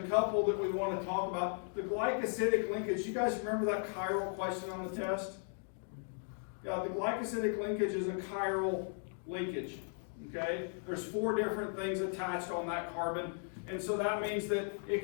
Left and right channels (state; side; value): silent; right; 53 dB below the other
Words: that we want to talk about. The glycosidic linkage, you guys remember that chiral question on the test? Yeah, the glycosidic linkage is a chiral linkage. Okay? There's 4 different things attached on that carbon, and so that means that it